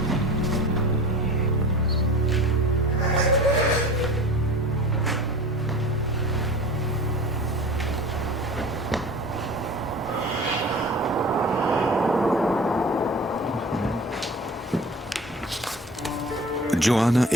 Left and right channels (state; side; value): normal; both; correlation 0.38